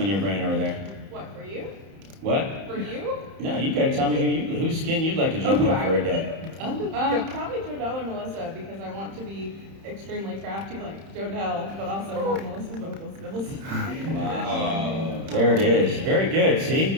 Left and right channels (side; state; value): left; late; 31 ms